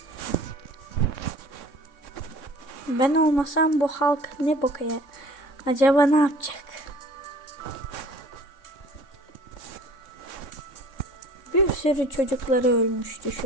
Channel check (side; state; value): right; late; 3.6 ms